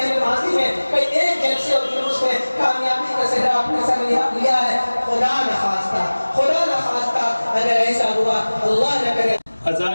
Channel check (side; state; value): both; inverted; correlation -1.00